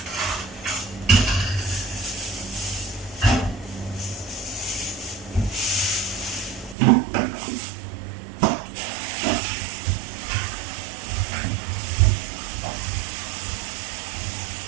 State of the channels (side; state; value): left; drops out; at 6.8 s